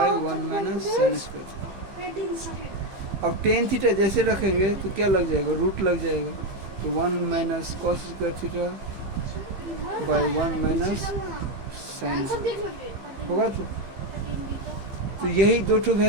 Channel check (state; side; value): late; left; 15 ms